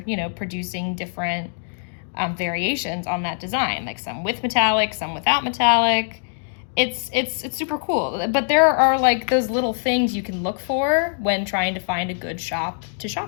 producing different variations on that design, like some with metallic, some without metallic. It's super cool. But there are like those little things you can look for when trying to find a good shop to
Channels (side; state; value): right; silent; digital silence